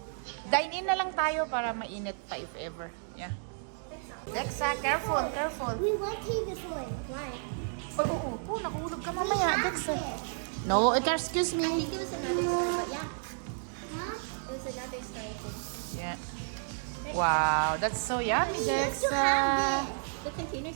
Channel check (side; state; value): left; silent; digital silence